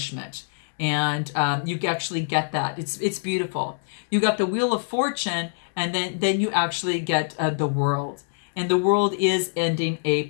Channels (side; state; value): right; silent; digital silence